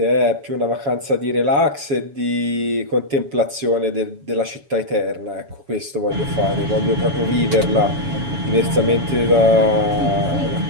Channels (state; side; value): late; left; 7.2 ms